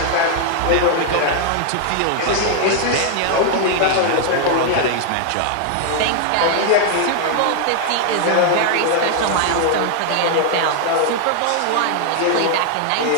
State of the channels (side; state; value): both; different; correlation 0.00